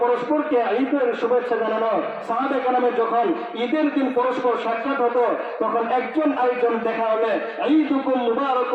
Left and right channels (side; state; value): both; identical; correlation 1.00